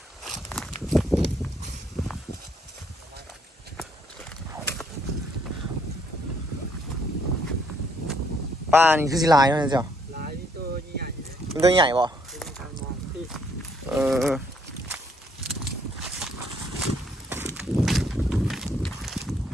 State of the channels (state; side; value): normal; both; correlation 0.68